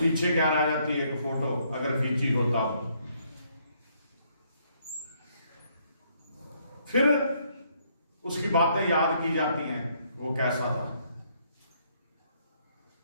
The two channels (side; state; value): both; inverted; correlation -0.70